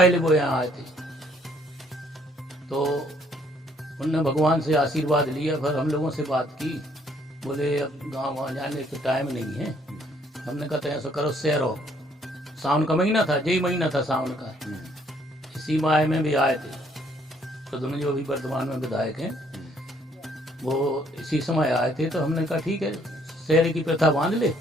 वो यहाँ आए थे, तो उनने भगवान से आशीर्वाद लिया। फिर हम लोगों से बात की, बोले अब गाँव वहाँ जाने का टाइम नहीं है। हमने कहा ऐसा करो, सैरो, सावन का महीना था, यही महीना था सावन का, इसी माह में भी आए थे प्रद्युम्न जो अभी वर्तमान में विधायक हैं, वो इसी समय आए थे। तो हमने कहा ठीक है, शहर की प्रथा बांध ले,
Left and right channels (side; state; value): both; normal; correlation 0.65